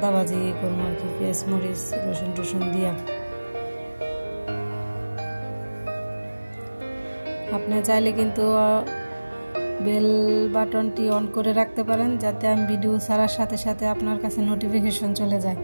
ভাজি করবো আর কি, পেঁয়াজ মরিচ রসুন টসুন দিয়া। আপনি চাইলে কিন্তু বেল বাটনটি অন করে রাখতে পারেন, যাতে আমি ভিডিও ছাড়ার সাথে সাথে আপনার কাছে নোটিফিকেশন চলে যায়।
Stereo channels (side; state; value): both; inverted; correlation -1.00